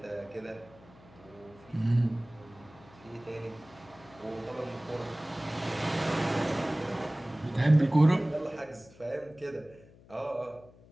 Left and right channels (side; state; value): left; noise; hum, 24 dB below the sound